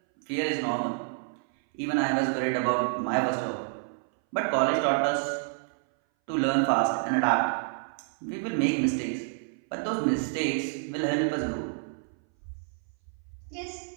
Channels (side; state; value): left; silent; 59 dB below the other